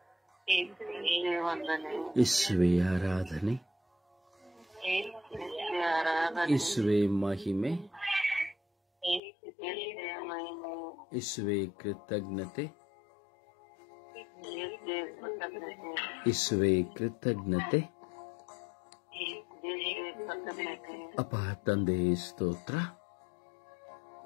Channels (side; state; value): right; drops out; at 9.2 s